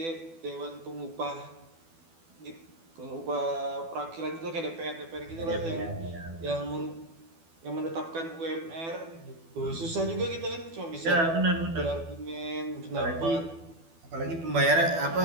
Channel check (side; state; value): left; late; 12 ms